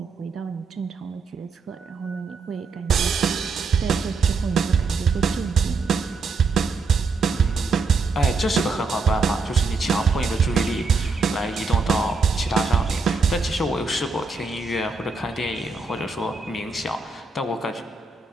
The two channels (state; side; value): quieter; left; 4.1 dB